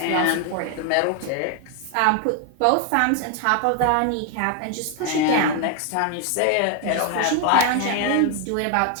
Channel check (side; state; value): both; different; correlation 0.01